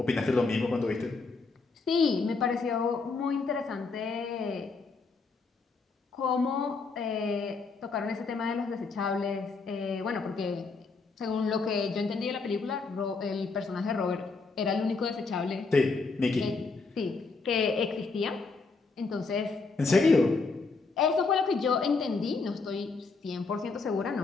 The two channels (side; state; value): right; quieter; 4.2 dB